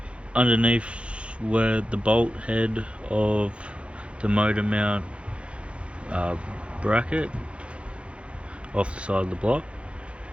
underneath where the bolt head of the motor mount bracket off the side of the block.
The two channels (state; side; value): late; left; 0.059 ms